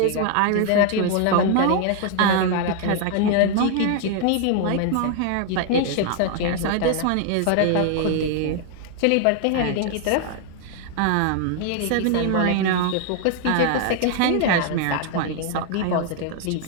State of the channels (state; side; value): different; both; correlation 0.00